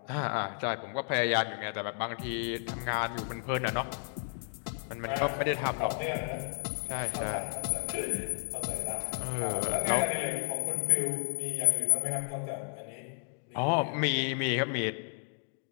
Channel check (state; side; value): silent; right; digital silence